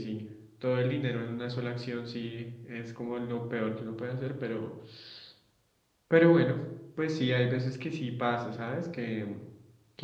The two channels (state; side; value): identical; both; correlation 1.00